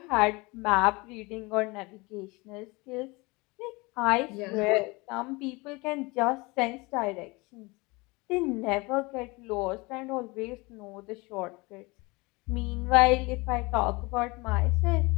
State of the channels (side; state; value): right; quieter; 25.1 dB